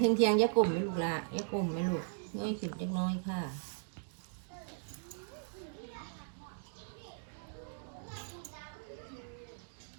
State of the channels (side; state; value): left; silent; digital silence